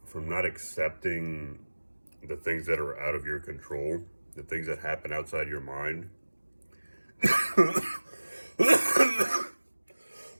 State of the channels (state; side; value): inverted; both; correlation -1.00